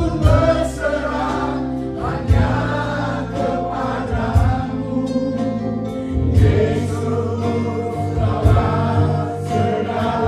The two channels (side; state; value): both; identical; correlation 1.00